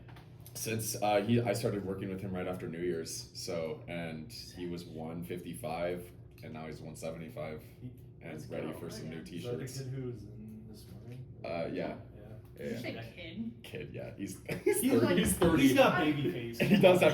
Since I started working with him right after New Year's, and he was 155, and now he's 175, and Let's ready go. for some new Is that the t-shirts. kid who was in this morning? Yeah. Yeah. Did you say Yeah. kid? Kid, yeah, he's He's 30. like- He's 30. He's got baby face. He does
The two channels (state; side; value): identical; both; correlation 1.00